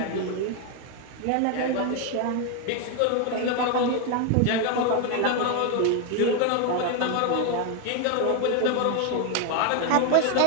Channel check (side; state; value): both; different; correlation 0.01